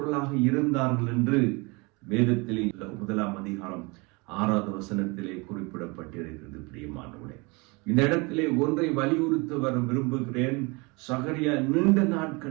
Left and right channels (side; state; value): left; quieter; 27.5 dB